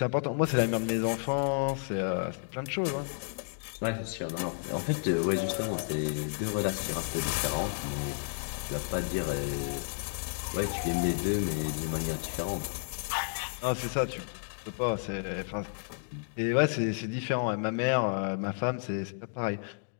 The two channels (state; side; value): silent; right; digital silence